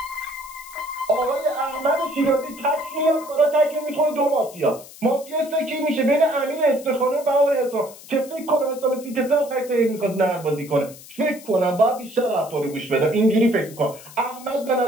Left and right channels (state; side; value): noise; left; hiss, 18 dB below the sound